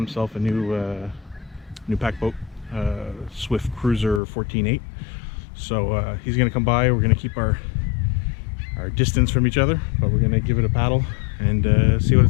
a new pack boat, Swift Cruiser 14.8. So he's gonna come by. We're gonna keep our distance from each other, but we're gonna give it a paddle and see what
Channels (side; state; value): right; drops out; at 4.2 s